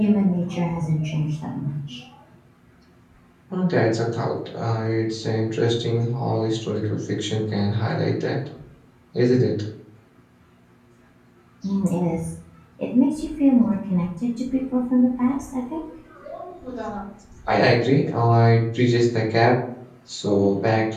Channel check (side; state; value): both; identical; correlation 1.00